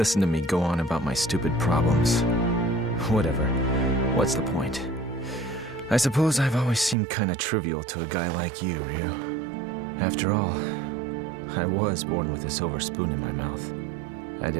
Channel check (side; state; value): left; drops out; at 7.0 s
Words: to me go on about my stupid problems. Whatever. What's the point? I suppose I've always seemed kinda trivial to a guy like you, Ryu. After all, I was born with a silver spoon in my mouth. I